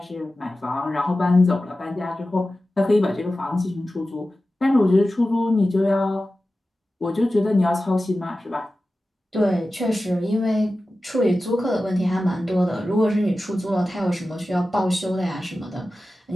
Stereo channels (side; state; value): both; normal; correlation 0.94